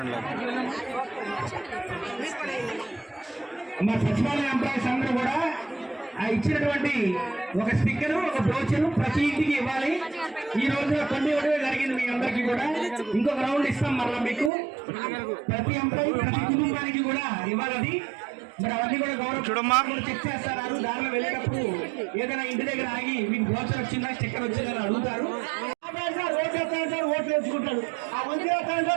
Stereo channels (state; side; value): drops out; left; at 14.5 s